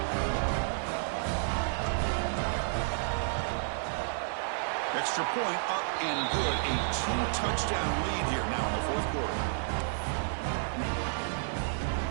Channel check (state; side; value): silent; left; digital silence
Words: Extra point up and good. A 2-touchdown lead here now in the 4th quarter.